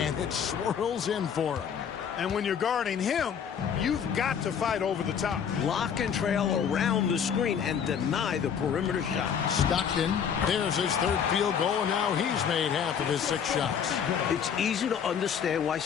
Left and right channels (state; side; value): quieter; right; 7.6 dB